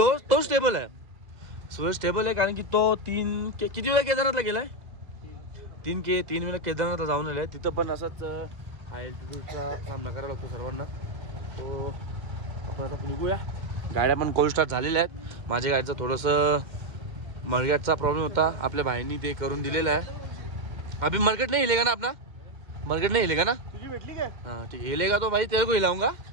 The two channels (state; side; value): late; left; 2.1 ms